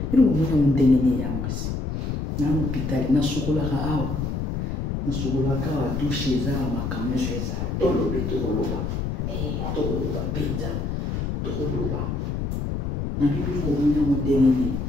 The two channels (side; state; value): left; noise; rumble, 2 dB below the sound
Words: Mais nous avons un déni ya mwasi. Na hôpital, na sukola ka awa, na sukola ka wa douche za makamyo za. Tolo bito koloba, tolo ba pizza, tolo ba. Na bibi nous avons un déni.